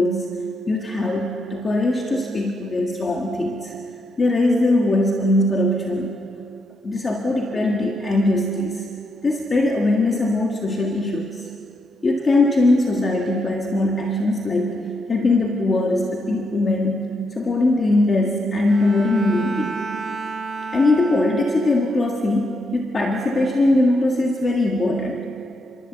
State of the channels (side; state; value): both; normal; correlation 0.80